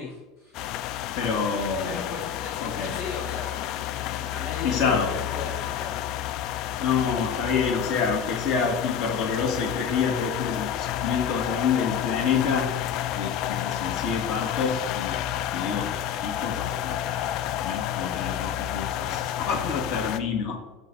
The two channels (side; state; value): right; quieter; 7.3 dB